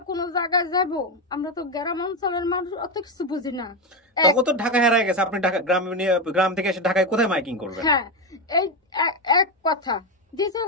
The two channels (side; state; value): both; normal; correlation 0.10